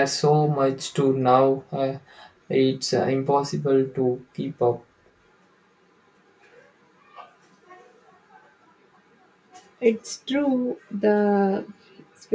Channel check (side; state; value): both; identical; correlation 1.00